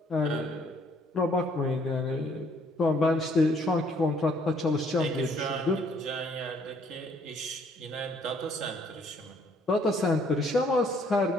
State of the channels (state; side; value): normal; both; correlation 0.64